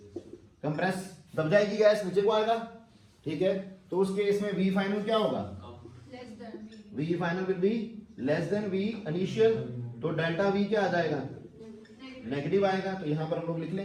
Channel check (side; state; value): both; identical; correlation 1.00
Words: कंप्रेस दब जाएगी गैस, नीचे को आएगा। ठीक है, तो उस केस में वी फाइनल क्या होगा, V final will be less than V initial, तो डेल्टा वी क्या आ जाएगा, नेगेटिव आएगा। तो यहां पर हम लोग लिख